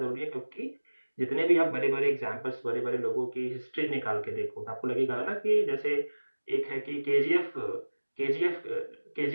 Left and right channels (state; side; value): inverted; both; correlation -1.00